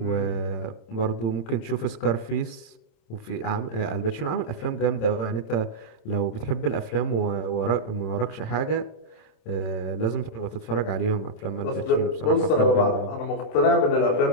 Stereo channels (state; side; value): late; right; 26 ms